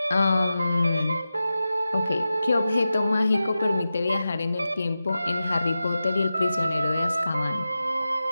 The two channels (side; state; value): both; inverted; correlation -0.92